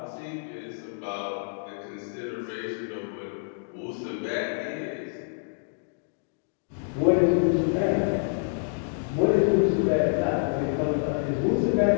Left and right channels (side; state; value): right; silent; digital silence